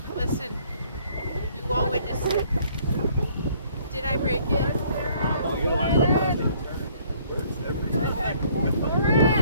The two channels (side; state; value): both; inverted; correlation -0.61